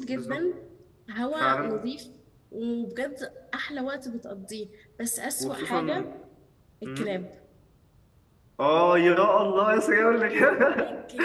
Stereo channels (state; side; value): identical; both; correlation 1.00